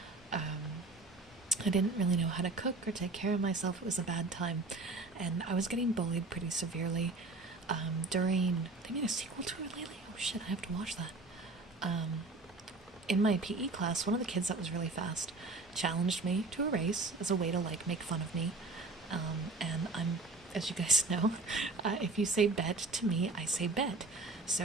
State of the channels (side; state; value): left; quieter; 3.2 dB